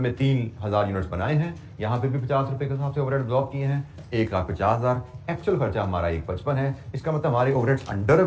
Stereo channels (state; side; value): identical; both; correlation 1.00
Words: 3,000 यूनिट्स बनाए हैं। यहाँ पे भी 50 रुपए के हिसाब से ओवरहेड एब्जॉर्ब किए हैं। 1,50,000 एक्चुअल खर्चा हमारा 155 है। इसका मतलब हमारे ओवरहेड्स अंडर